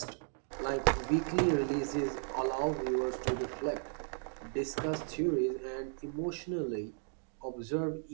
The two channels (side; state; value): left; silent; 54 dB below the other